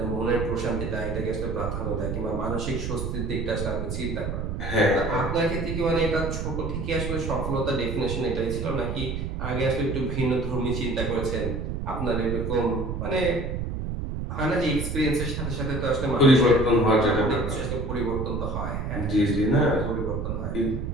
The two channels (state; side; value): noise; right; rumble, 3 dB below the sound